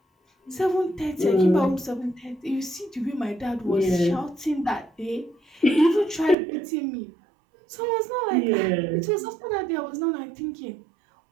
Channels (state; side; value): drops out; left; at 6.4 s